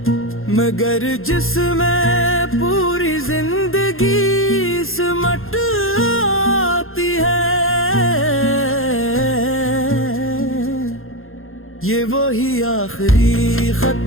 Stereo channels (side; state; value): right; late; 0.61 ms